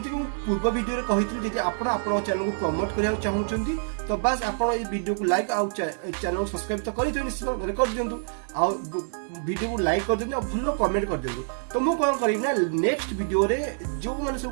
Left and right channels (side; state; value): left; silent; digital silence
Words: को पूर्व वीडियो रे कहितली जदि आपण आपण चैनल को प्रमोट करिया चाहूछंती तो बस आपण ए वीडियो को लाइक आ चैनल को सब्सक्राइब तो करी तो निश्चित कर दियंतु आ वीडियो को लाइक कर दियंतु भलो कमेंट कर दियंतु तो मु कोन करिब ना नेक्स्ट वीडियो रे जो माने